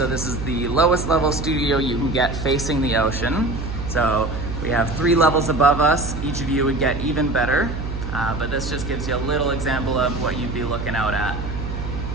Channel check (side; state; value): right; noise; hum, 6 dB below the sound